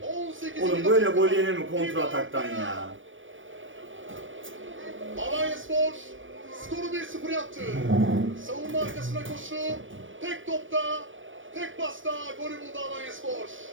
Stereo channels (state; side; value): late; left; 0.57 ms